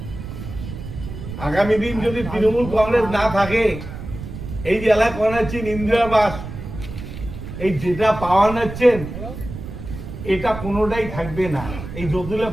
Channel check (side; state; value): right; noise; rumble, 10 dB below the sound